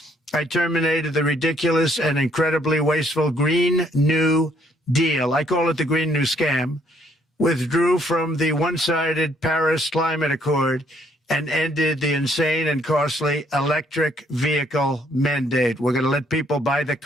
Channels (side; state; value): both; normal; correlation 0.67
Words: I terminated the ridiculous and incredibly wasteful Green New Deal. I call it the Green New Scam. Withdrew from the one-sided Paris Climate Accord and ended the insane and costly electric vehicle mandate. We're going to let people buy the